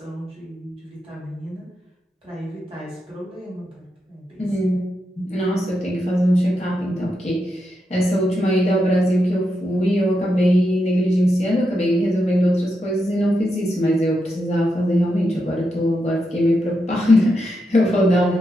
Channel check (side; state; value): both; normal; correlation 0.85